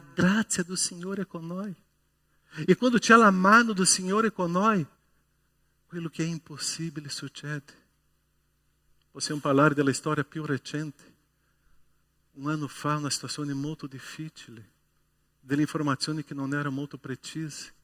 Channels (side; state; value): both; identical; correlation 1.00